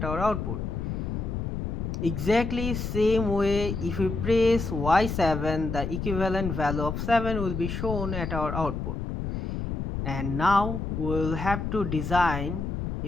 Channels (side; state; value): left; noise; rumble, 3 dB below the sound